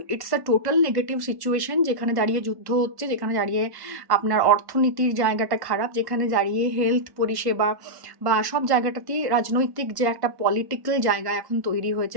it's a total negative situation, যেখানে দাঁড়িয়ে যুদ্ধ হচ্ছে, যেখানে দাঁড়িয়ে আপনার অর্থনীতির জায়গাটা খারাপ, যেখানে দাঁড়িয়ে হেলথ পরিষেবা বা সব জায়গাটাতেই রাজনৈতিক যে একটা পলিটিক্যাল জায়গা এখন তৈরি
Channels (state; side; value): late; left; 1.1 ms